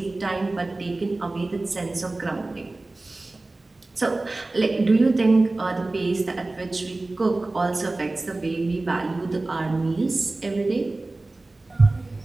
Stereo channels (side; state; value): left; quieter; 3.0 dB